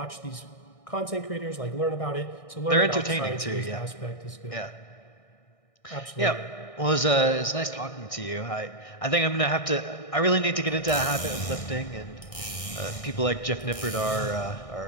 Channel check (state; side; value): late; right; 1.6 ms